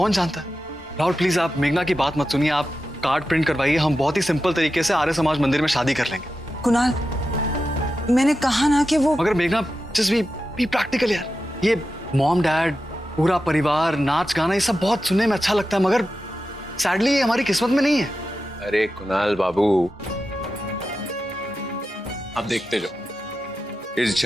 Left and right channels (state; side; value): normal; both; correlation 0.91